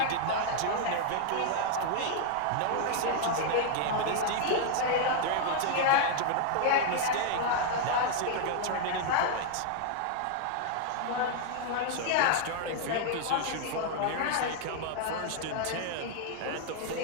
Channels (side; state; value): both; different; correlation 0.00